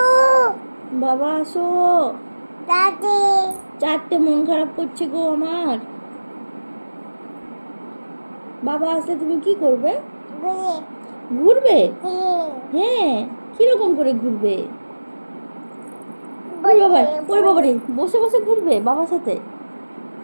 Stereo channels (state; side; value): inverted; both; correlation -1.00